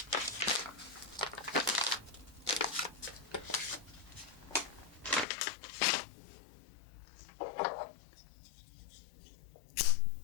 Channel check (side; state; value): right; drops out; at 5.2 s